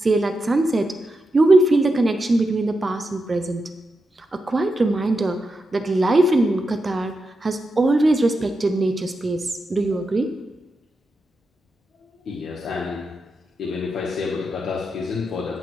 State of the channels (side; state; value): both; normal; correlation 0.87